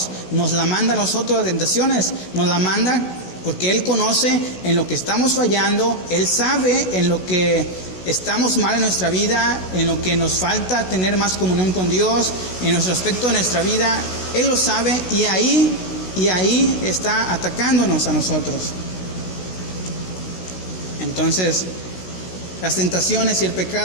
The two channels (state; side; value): late; right; 16 ms